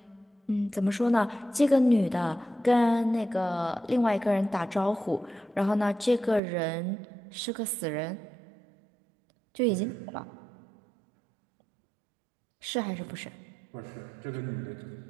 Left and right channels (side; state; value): left; drops out; at 6.4 s